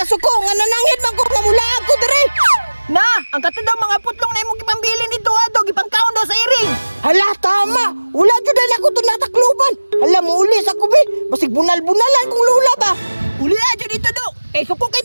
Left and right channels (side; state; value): both; inverted; correlation -1.00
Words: suko. Nga nanangit man ko mamula ako, dre. Na, ang katadaw mga putlong na imong ipambili nito adog ipangkaon daw sa iring. Hala, tama. Wala jud na ako to natakluban. Hala mo uli sa kubi. Basig bunal-bunalan kung lula ba. Uli aja dito do. Eh suko kay